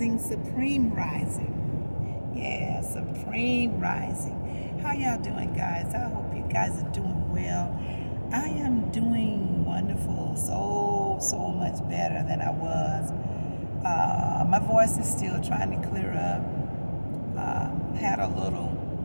Supreme Rising. Yeah, Supreme Rising. How y'all doing, guys? I hope you guys are doing well. I am doing wonderful, so much better than I was. My voice is still trying to clear up. Had a little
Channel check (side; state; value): both; inverted; correlation -1.00